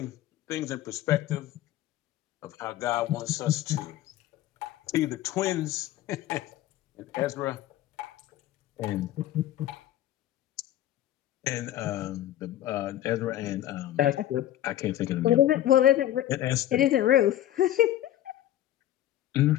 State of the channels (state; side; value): quieter; right; 13.0 dB